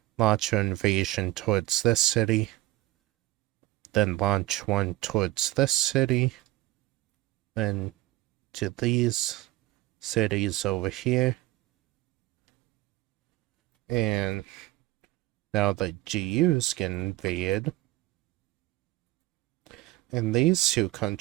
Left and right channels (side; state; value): left; quieter; 17.9 dB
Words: launch an invasion towards this city, then launch one towards this city, then to these cities over here. And now the GUs get invaded. And these two